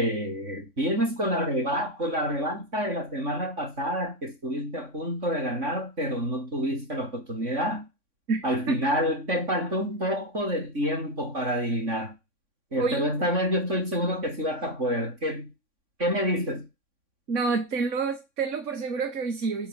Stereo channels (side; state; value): left; late; 3.6 ms